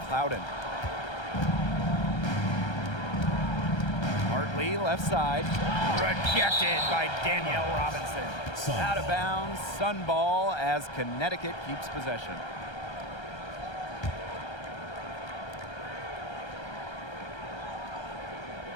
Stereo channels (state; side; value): late; right; 1.3 ms